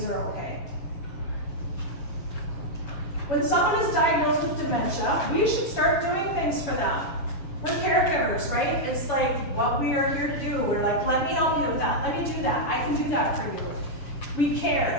are okay. When someone is diagnosed with dementia, we should start doing things for them. We're caregivers, right? It's like what we are here to do. We're like, let me help you with that. Let me do that. I can do that for you. We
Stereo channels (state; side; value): late; right; 7.0 ms